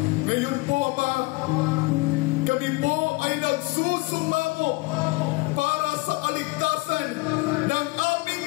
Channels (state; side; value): quieter; right; 24.1 dB